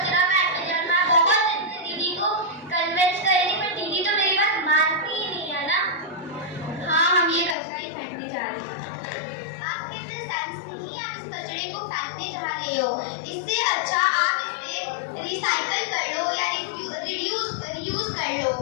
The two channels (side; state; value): right; drops out; at 7.6 s